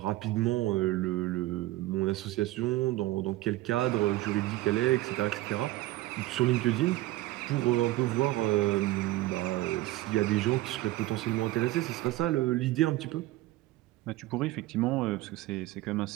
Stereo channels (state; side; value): quieter; left; 17.3 dB